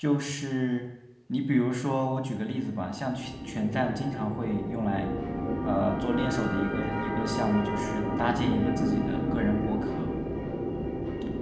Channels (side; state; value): both; identical; correlation 1.00